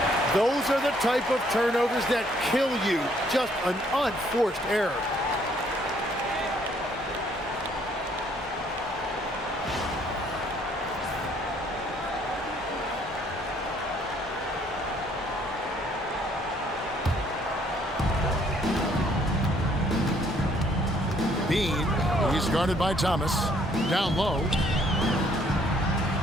Those are the type of turnovers that kill you. Just an unforced error. Bean, he's guarded by Thomas. Down low.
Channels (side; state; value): both; normal; correlation 0.65